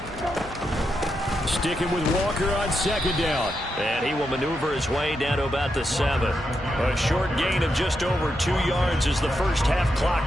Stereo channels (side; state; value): both; normal; correlation 0.84